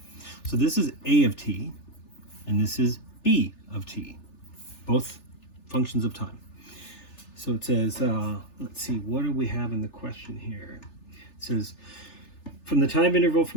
So this is A of t, and this is B of t, both functions of time. So it says, let's see, what do we have in the question here? It says, from the time interval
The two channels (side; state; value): right; late; 3.4 ms